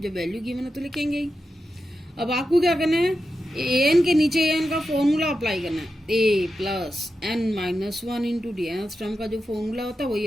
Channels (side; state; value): both; normal; correlation 0.90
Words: जब वैल्यू गिवन है तो लिखेंगे ही। अब आपको क्या करना है, an के नीचे an का फॉर्मूला अप्लाई करना है, a plus n-1 into D, nth term का जो फॉर्मूला होता है वही